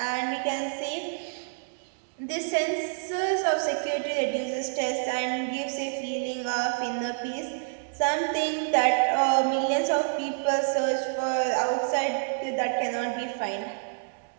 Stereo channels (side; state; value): left; silent; digital silence